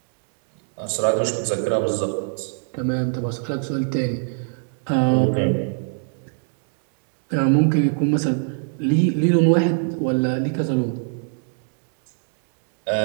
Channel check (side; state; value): left; silent; digital silence